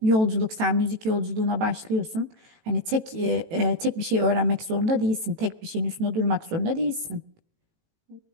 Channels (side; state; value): left; late; 18 ms